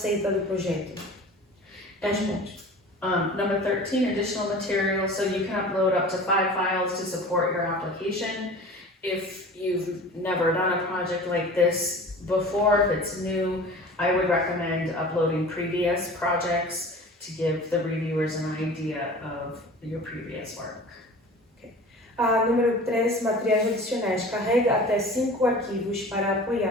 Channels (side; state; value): both; normal; correlation 0.40